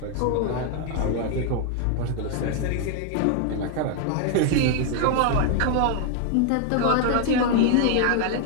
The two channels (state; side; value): different; both; correlation 0.01